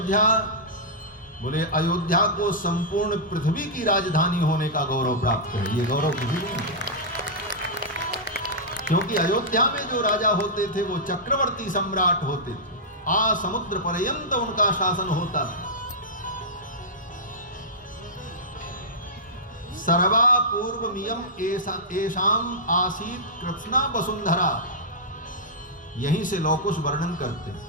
बोले अयोध्या को संपूर्ण पृथ्वी की राजधानी होने का गौरव प्राप्त है। ये गौरव किसी को नहीं है, क्योंकि अयोध्या में जो राजा होते थे वो चक्रवर्ती सम्राट होते थे, आ समुद्र पर्यंत उनका शासन होता था। सर्वा पूर्वमियम एषाम आसीत कृत्स्ना वसुंधरा, यहीं से लौकुश वर्णन करते हैं।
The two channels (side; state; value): both; normal; correlation -0.11